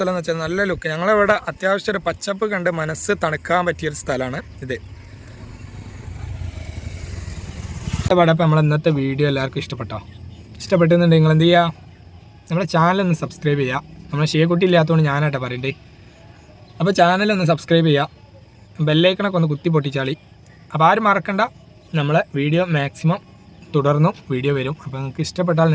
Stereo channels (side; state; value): both; identical; correlation 1.00